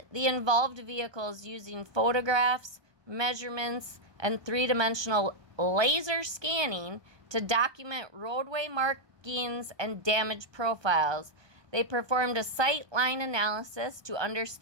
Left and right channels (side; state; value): left; late; 1.2 ms